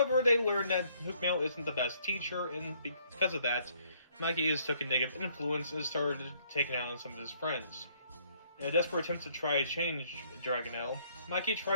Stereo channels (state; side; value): inverted; both; correlation -0.66